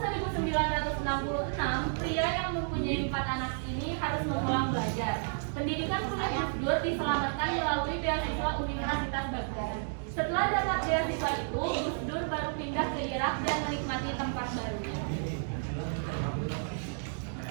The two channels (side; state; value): left; silent; digital silence